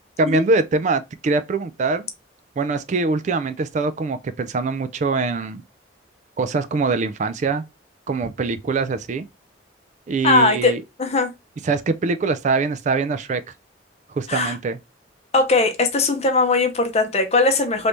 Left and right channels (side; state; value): both; normal; correlation 0.08